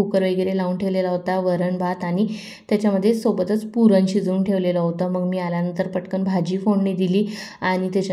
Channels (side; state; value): both; identical; correlation 1.00